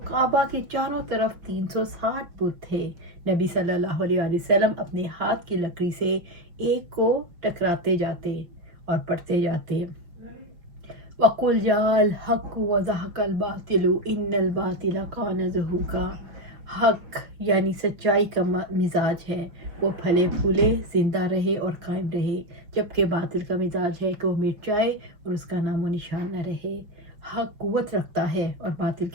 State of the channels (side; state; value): left; late; 5.4 ms